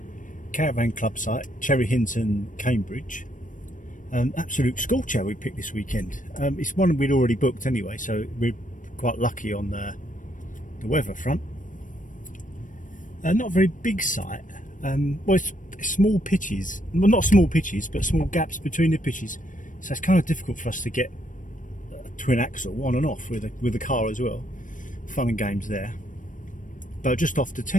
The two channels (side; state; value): right; late; 0.38 ms